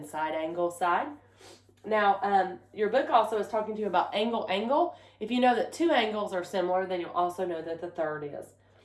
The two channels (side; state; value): both; identical; correlation 1.00